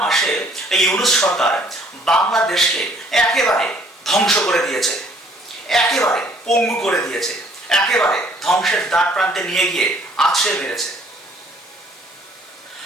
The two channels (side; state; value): both; normal; correlation 0.60